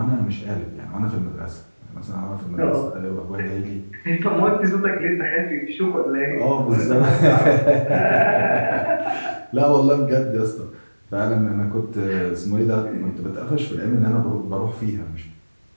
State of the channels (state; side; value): inverted; both; correlation -1.00